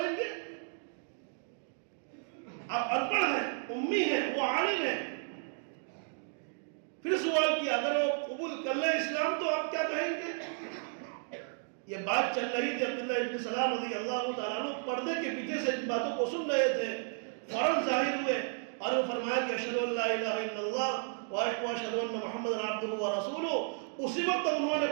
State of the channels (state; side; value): silent; left; 56 dB below the other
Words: گے؟ آپ ان پڑھ ہیں، امی ہیں، وہ عالم ہیں۔ پھر سوال کیا اگر وہ قبول کر لیں اسلام تو آپ کیا کہیں گے؟ یہ بات چل رہی تھی، عبداللہ ابن سلام رضی اللہ تعالیٰ عنہ پردے کے پیچھے سے ان باتوں کو سن رہے تھے، فوراً ظاہر ہوئے اور وہ فرمایا کہ اشہد ان لا الہ الا اللہ واشہد ان محمد عبدہ ورسولہ۔ اسی وقت انہوں نے